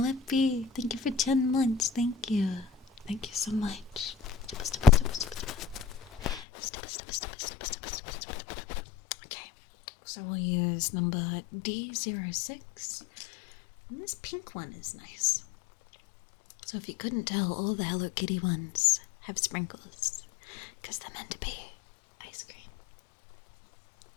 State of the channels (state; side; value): drops out; right; at 6.5 s